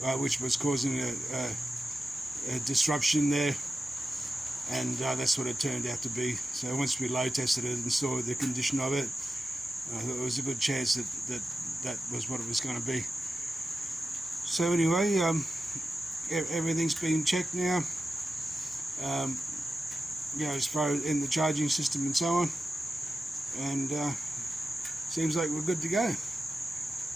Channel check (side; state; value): both; normal; correlation 0.92